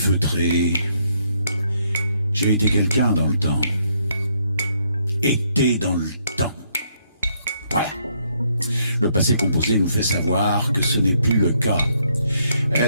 J'ai été quelqu'un dans le temps. Été dans le temps. Voilà. Le passé composé nous fait savoir que ce n'est plus le cas.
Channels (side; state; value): both; inverted; correlation -0.72